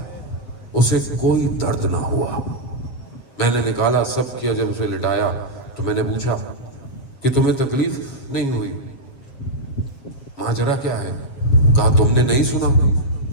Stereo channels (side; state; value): right; late; 7.4 ms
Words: اسے کوئی درد نہ ہوا۔ میں نے نکالا، سب کیا، جب اسے لٹایا تو میں نے پوچھا کہ تمہیں تکلیف نہیں ہوئی؟ ماجرا کیا ہے؟ کہا تم نے نہیں سنا